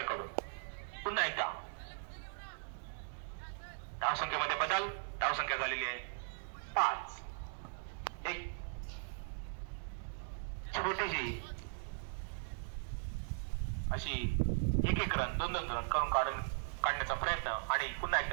कडून. पुन्हा एकदा धावसंख्येमध्ये बदल. धावसंख्या झालेली आहे 5. एक छोटीशी अशी एक रन 2-2 रन करून काढण्याचा प्रयत्न. आणि पुन्हा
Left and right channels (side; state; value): left; silent; digital silence